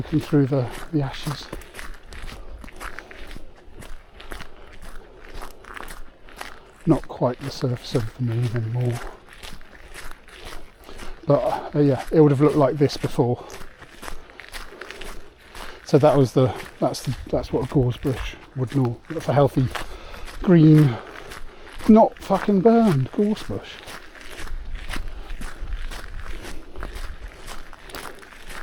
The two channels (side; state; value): both; identical; correlation 1.00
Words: through the ashes. Not quite the surface of the moon anymore, but yeah, it would have looked like this before. So that's what a gorse bush would know. That's a healthy green, not fucking burned gorse bush.